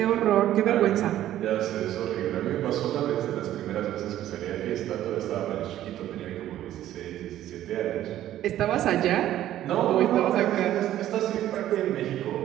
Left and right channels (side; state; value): left; quieter; 12.8 dB